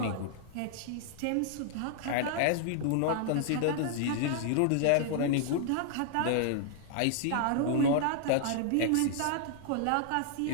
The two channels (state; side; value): different; both; correlation -0.01